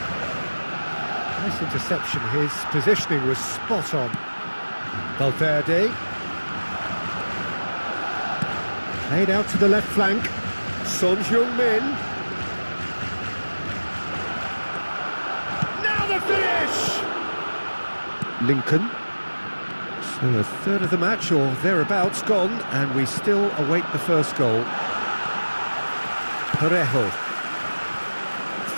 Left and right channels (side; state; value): both; inverted; correlation -1.00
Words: Nice interception. His positioning was spot on. Valverde. Played out to the left flank. Son Heung-min. Now the finish! Lincoln. So a third of the match, or thereabouts, gone, and we still await the first goal. Parejo.